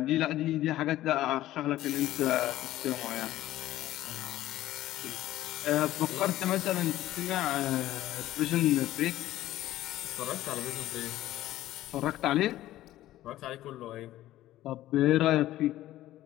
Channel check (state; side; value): quieter; right; 14.7 dB